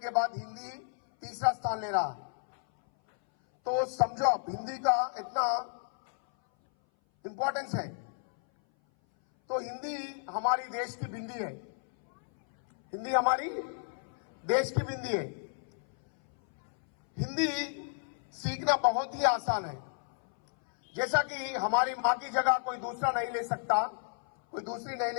बाद हिंदी तीसरा स्थान ले रहा। तो समझो आप हिंदी का इतना इंपॉर्टेंस है। तो हिंदी हमारी देश की बिंदी है। हिंदी हमारी देश की बिंदी है। हिंदी सीखना बहुत ही आसान है। जैसा कि हमारी मां की जगह कोई दूसरा नहीं ले सकता, कोई दूसरी नहीं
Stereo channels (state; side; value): silent; right; 56 dB below the other